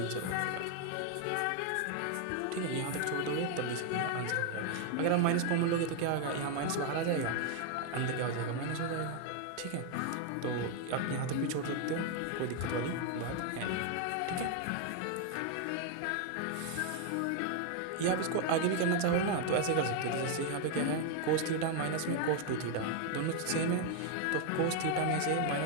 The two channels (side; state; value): both; different; correlation 0.01